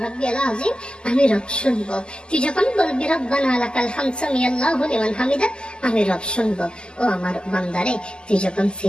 রাব্বিয়াল আযীম, আমি রব শুনবো। তুই যখন বলবি রব্বানা লাকাল হামদ সামিআল্লাহু লিমান হামিদা, আমি রব শুনবো। ও আমার বান্দারে তুই যখন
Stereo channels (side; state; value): right; late; 0.048 ms